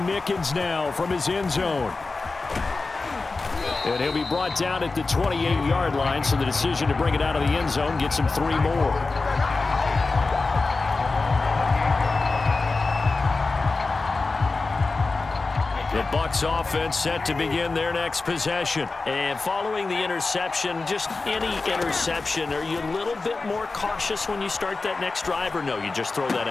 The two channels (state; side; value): quieter; right; 3.8 dB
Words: Mickens now from his end zone. And he'll be brought down at the 28-yard line, so the decision to bring it out of the end zone gets him 3 more. The Bucs offense set to begin their next possession. And following the interception, just any interception, are you a little bit more cautious when you start that next drive, or no, you just throw that